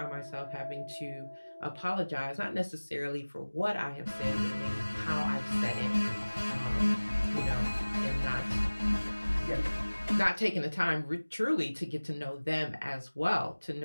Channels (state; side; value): inverted; both; correlation -1.00